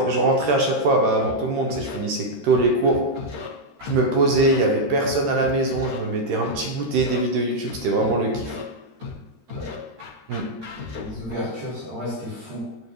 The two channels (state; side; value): late; left; 13 ms